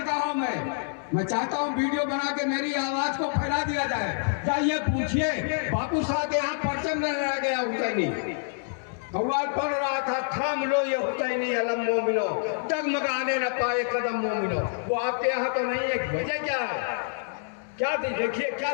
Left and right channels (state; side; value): silent; right; 60 dB below the other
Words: में, मैं चाहता हूँ वीडियो बना के मेरी आवाज को फैला दिया जाए। जाइए पूछिए बापू साहब यहाँ परचम न रह गया हुसैनी, कव्वाल पढ़ रहा था, थाम लो ये हुसैनी अलम मोमिनो, डगमगाने न पाए कदम मोमिनो। वो आपके यहाँ तो नहीं है, वजह क्या है? क्या देखिए क्या